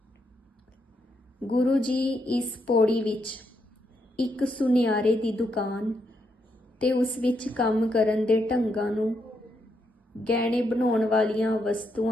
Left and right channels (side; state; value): both; normal; correlation 0.79